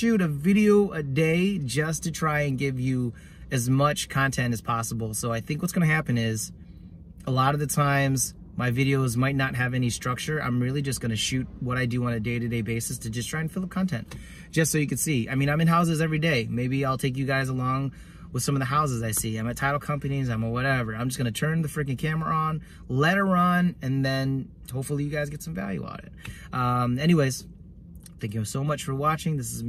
a video a day just to try and give you as much content as possible. So I think what's gonna happen is, a lot of the times my videos might not have any structure. I'm really just gonna shoot what I do on a day-to-day basis to just try and fill up content, just so you can see. I mean, I'm in houses every day. Maybe I'll take you guys along with some of the houses I see. I'm at title companies, I'm at whatever. I'm just gonna turn the freaking camera on, let it run, and then hopefully you guys get some value out of it. Anyways, thank you so much for watching. This is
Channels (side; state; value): both; identical; correlation 1.00